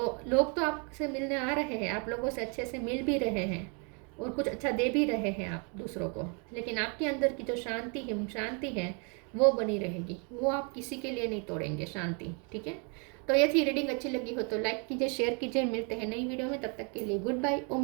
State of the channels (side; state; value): left; quieter; 36.0 dB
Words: लोग तो आपसे मिलने आ रहे हैं, आप लोगों से अच्छे से मिल भी रहे हैं और कुछ अच्छा दे भी रहे हैं आप दूसरों को, लेकिन आपके अंदर की जो शांति है वो बनी रहेगी, वो आप किसी के लिए नहीं तोड़ेंगे शांति। ठीक है, तो ये थी रीडिंग। अच्छी लगी हो तो लाइक कीजिए, शेयर कीजिए। मिलते हैं नई वीडियो में, तब तक के लिए गुड बाय।